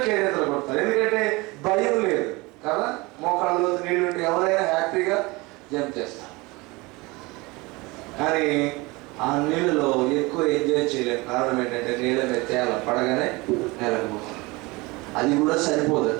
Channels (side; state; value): left; quieter; 24.0 dB